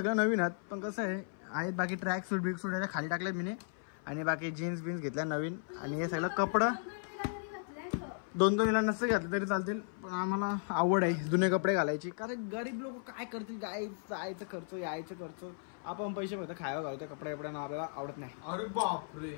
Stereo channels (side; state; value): right; silent; 54 dB below the other